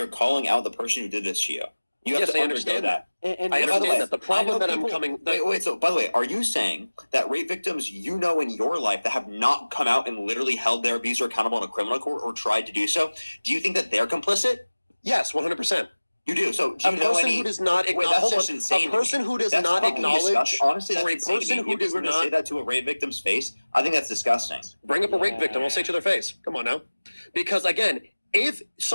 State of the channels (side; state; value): both; inverted; correlation -1.00